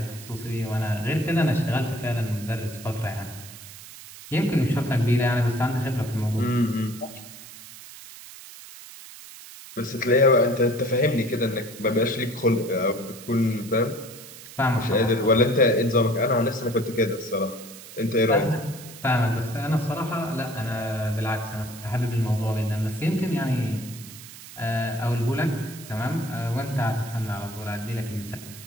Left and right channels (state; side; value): noise; right; hiss, 16 dB below the sound